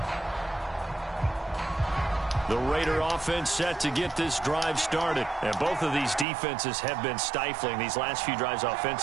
The Raider offense set to get this drive started. And both of these defenses have been stifling these last few drives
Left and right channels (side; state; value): left; drops out; at 6.2 s